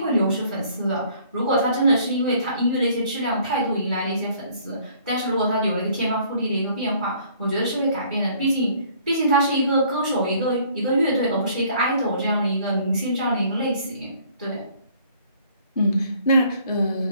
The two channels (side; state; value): both; inverted; correlation -0.59